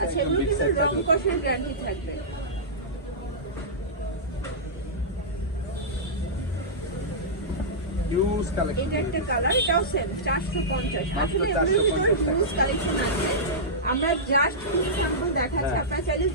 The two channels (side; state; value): both; normal; correlation -0.15